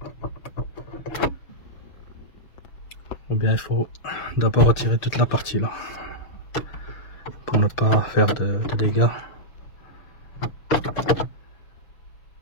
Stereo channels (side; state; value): right; late; 6.6 ms